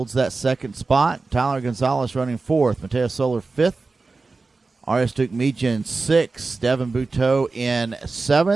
that second spot. Tyler Gonzalez running 4th, Mateus Soler 5th, R.S. Dukmejian 6th, Devin Buteau in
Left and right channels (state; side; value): quieter; left; 3.9 dB